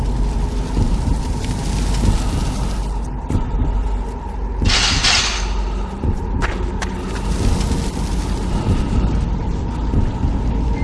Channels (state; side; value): identical; both; correlation 1.00